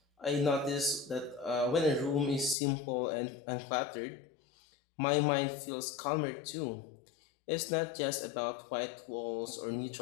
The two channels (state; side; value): drops out; right; at 2.6 s